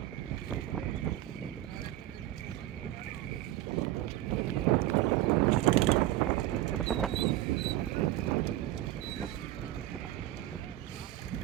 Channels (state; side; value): quieter; left; 14.5 dB